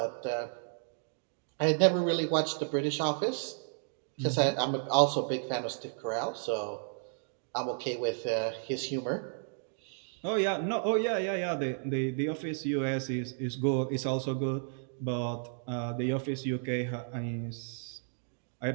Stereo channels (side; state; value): left; silent; digital silence